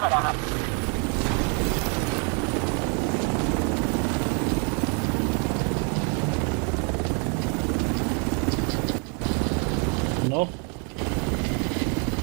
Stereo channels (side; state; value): left; quieter; 35.9 dB